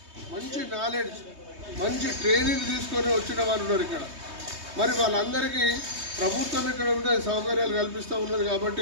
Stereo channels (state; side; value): late; left; 3.2 ms